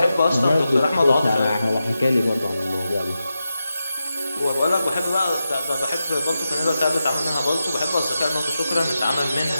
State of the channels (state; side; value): inverted; both; correlation -0.90